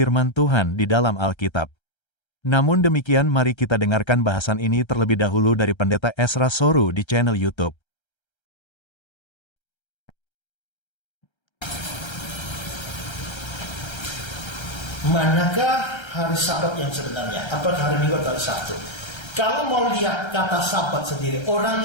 Tuhan di dalam Alkitab. Namun demikian mari kita dengarkan bahasan ini terlebih dahulu dari Pendeta Ezra Soru di channel YouTube. Manakah hari Sabat yang sebenarnya? Apakah hari Minggu atau hari Sabtu? Kalau mau lihat kata Sabat sendiri,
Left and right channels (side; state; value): right; late; 1.3 ms